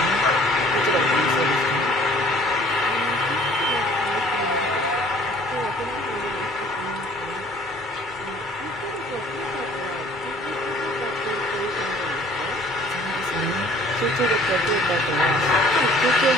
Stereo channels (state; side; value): normal; both; correlation 0.55